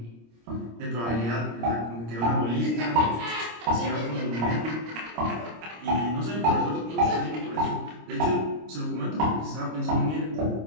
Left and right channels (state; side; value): late; left; 26 ms